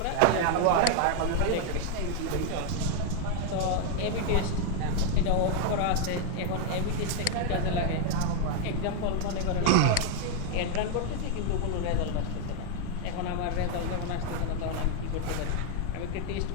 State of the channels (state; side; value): different; both; correlation 0.00